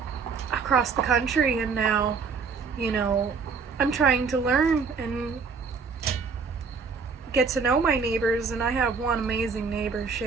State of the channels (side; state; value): left; quieter; 5.2 dB